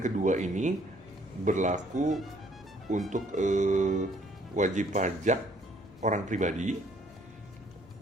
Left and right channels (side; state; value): left; noise; rumble, 26 dB below the sound